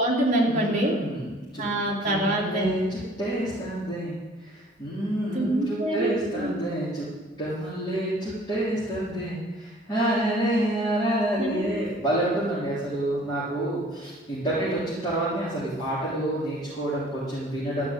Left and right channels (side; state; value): both; normal; correlation 0.53